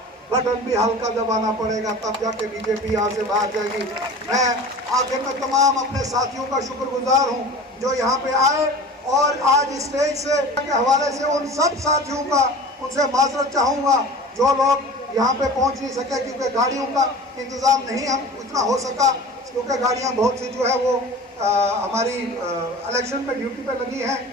बटन भी हल्का दबाना पड़ेगा, तब जाके बीजेपी यहाँ से बाहर जाएगी। मैं आखिर में तमाम अपने साथियों का शुक्रगुजार हूँ जो यहाँ पे आए, और आज स्टेज से के हवाले से उन सब साथियों का उनसे माजरत चाहूँगा जो लोग यहाँ पे पहुँच नहीं सके, क्योंकि गाड़ियों का इंतज़ाम नहीं हम उतना हो सका, क्योंकि गाड़ियाँ बहुत सी जो है वो हमारी इलेक्शन में ड्यूटी पे लगी हैं।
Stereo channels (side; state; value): both; normal; correlation 0.38